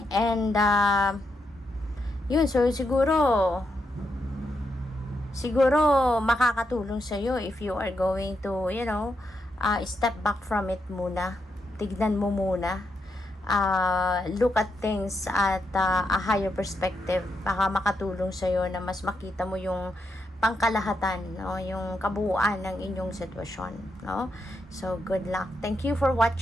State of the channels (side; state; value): both; normal; correlation 0.82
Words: and yun, so siguro makakatulong sa iyo if you are going to step back from it muna, tignan mo muna look at things at a higher perspective. Baka makatulong sa'yo na mas makita mo yung pangkalahatan, no? Yung kabuuan ng inyong sitwasyon, no? So, good luck. Thank you for